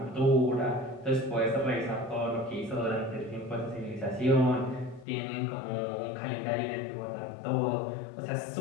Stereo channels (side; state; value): right; drops out; at 5.1 s